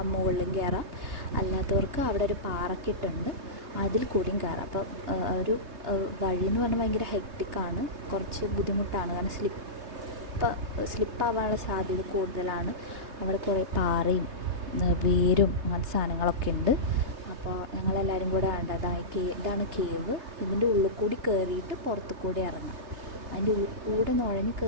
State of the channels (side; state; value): left; late; 3.3 ms